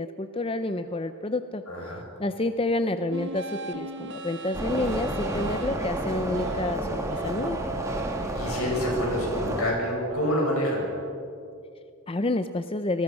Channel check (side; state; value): both; normal; correlation 0.39